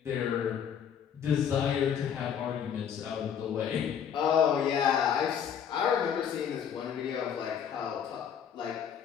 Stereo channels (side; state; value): right; quieter; 8.2 dB